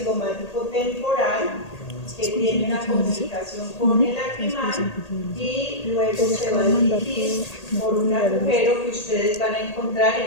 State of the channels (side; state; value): right; late; 1.8 ms